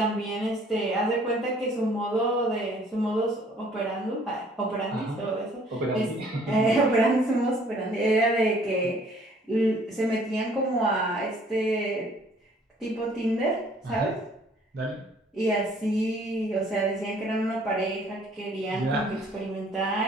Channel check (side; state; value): both; normal; correlation 0.58